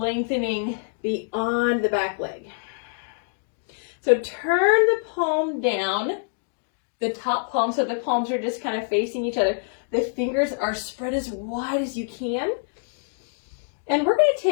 beyond the back leg. So turn the palm down, the top palm, so the palms are just kind of facing each other. The fingers are spread as wide as you can. And we're going to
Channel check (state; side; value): silent; right; digital silence